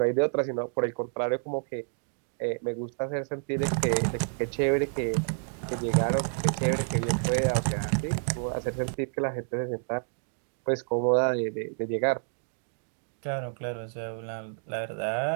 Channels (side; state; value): left; silent; digital silence